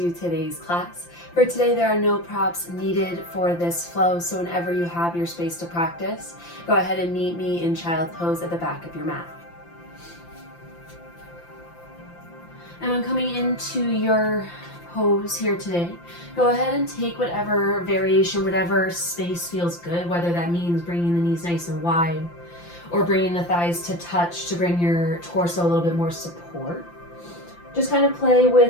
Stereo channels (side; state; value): right; late; 5.8 ms